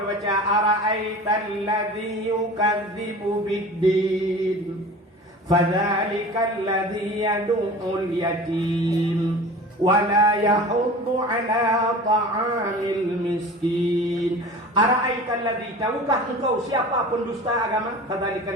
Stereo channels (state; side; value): normal; both; correlation 0.38